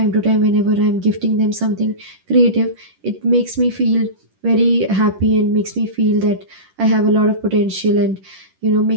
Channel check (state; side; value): late; left; 10 ms